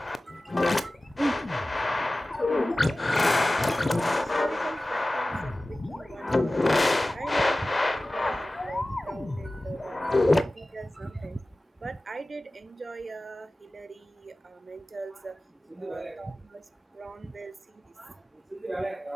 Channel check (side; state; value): both; normal; correlation 0.97